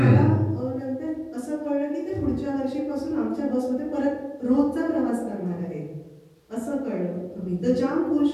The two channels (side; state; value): both; identical; correlation 1.00